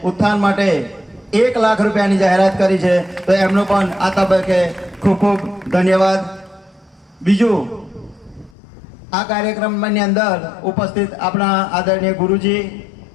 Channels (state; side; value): drops out; right; at 8.6 s